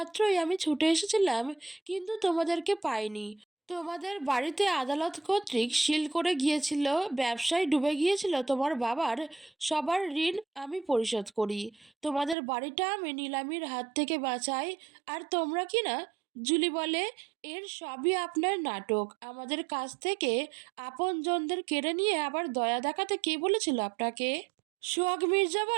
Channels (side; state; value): left; drops out; at 12.4 s